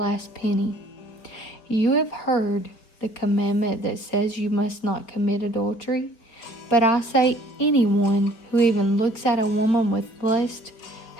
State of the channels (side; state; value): right; late; 4.8 ms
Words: penny. You have heard the commandment that says you must not commit adultery, but I say anyone who even looks at a woman with lust